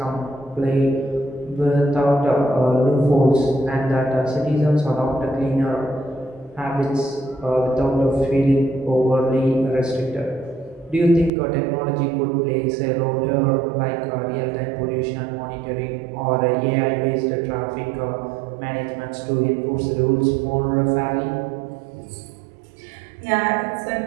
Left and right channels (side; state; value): left; drops out; at 11.3 s